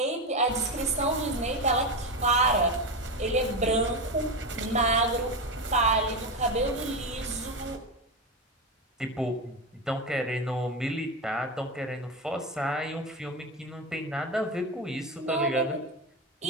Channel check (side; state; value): both; normal; correlation 0.16